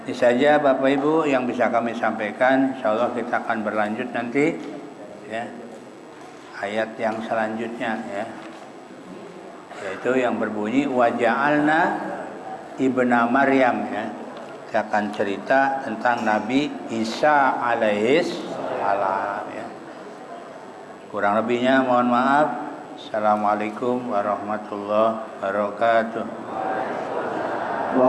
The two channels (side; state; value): both; identical; correlation 1.00